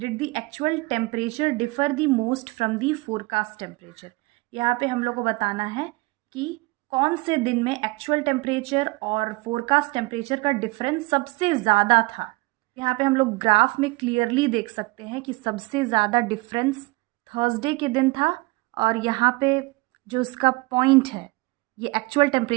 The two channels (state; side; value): quieter; left; 23.6 dB